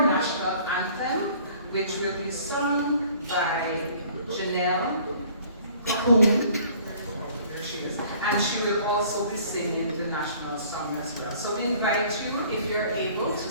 national anthem, which will be sung by Janelle, who and she will also be singing the national song as well. So we invite you, if you're able,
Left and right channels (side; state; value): both; inverted; correlation -0.54